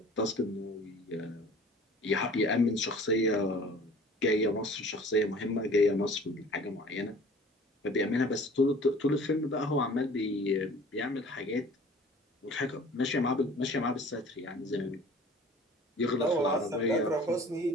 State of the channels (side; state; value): both; normal; correlation 0.47